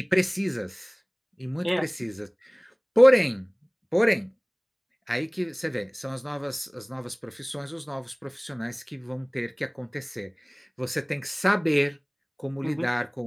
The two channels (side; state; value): both; identical; correlation 1.00